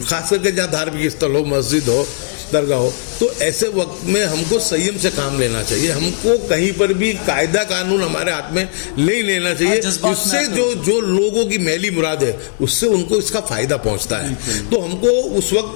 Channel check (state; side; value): silent; right; 68 dB below the other